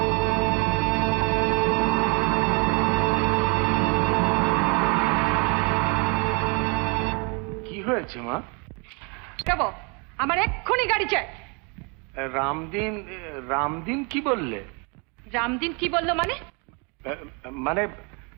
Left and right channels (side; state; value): left; quieter; 33.1 dB